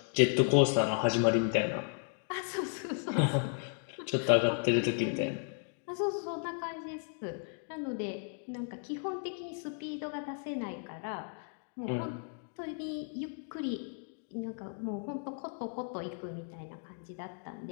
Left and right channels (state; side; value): silent; right; 55 dB below the other